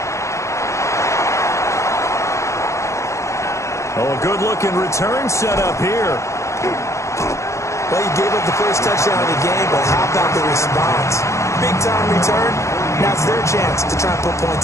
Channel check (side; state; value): right; late; 0.14 ms